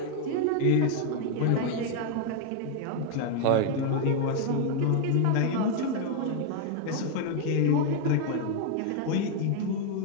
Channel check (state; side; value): different; both; correlation 0.00